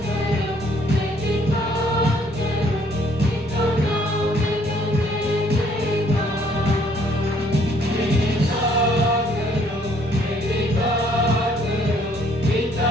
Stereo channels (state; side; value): normal; both; correlation 0.64